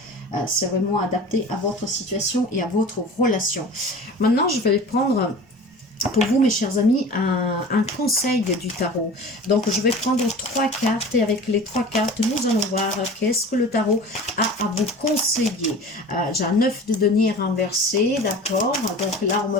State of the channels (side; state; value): both; normal; correlation 0.38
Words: C'est vraiment adapté à votre situation et à votre relation. Maintenant, je vais prendre pour vous, mes chers amis, un conseil du tarot. Donc, je vais prendre 3 cartes et avec les 3 cartes, nous allons voir qu'est-ce que le tarot a à vous conseiller. J'ai un 9 de denier renversé, d'accord. Donc là, on me